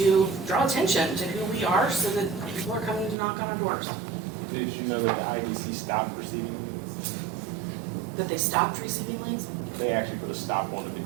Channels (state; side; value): drops out; left; at 3.2 s